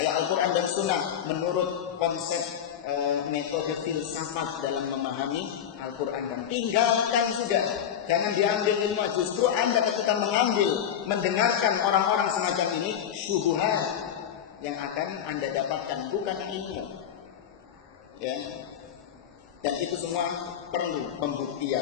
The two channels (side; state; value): right; quieter; 9.1 dB